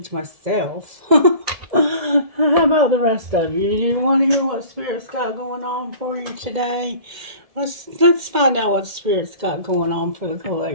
myself. How about the rest of you? You want to hear what Spirit's got going on for you today? Let's find out what Spirit's got going on for the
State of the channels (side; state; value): left; late; 1.7 ms